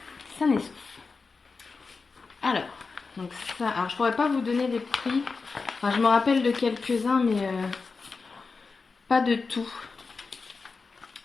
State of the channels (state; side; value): quieter; right; 4.5 dB